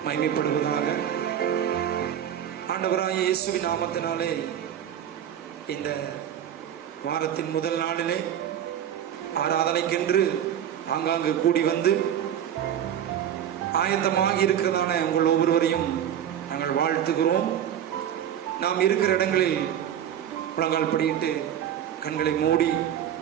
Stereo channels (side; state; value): left; quieter; 10.0 dB